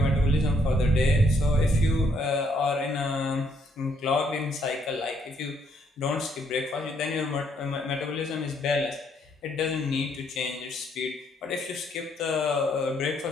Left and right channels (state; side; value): normal; both; correlation 0.70